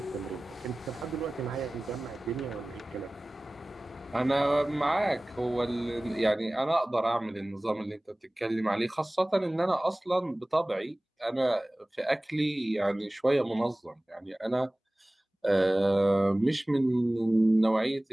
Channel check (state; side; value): normal; both; correlation 0.98